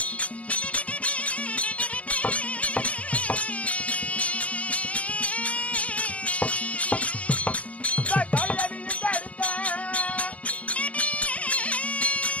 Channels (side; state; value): right; late; 0.070 ms